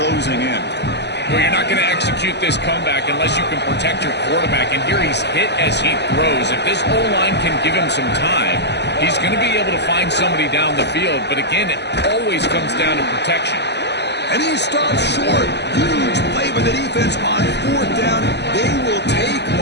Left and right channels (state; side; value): late; right; 0.50 ms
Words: in. Well, you're not going to execute this comeback unless you can protect your quarterback. And here he's hit as he throws. If this O-line can give him some time, he's going to be able to find somebody down the field. But again, it always comes down to protection. And he stops short. Huge play by the defense on 4th down. They will take